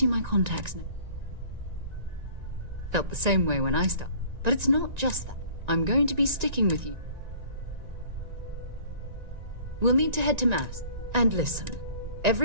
my contacts know. Felt the same way when I started. But it's not just that. I'm going to be sticking with you. We'll need to head to Mass. And listen,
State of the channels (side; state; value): left; late; 1.9 ms